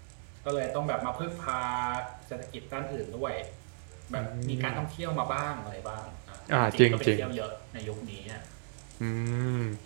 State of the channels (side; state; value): left; silent; digital silence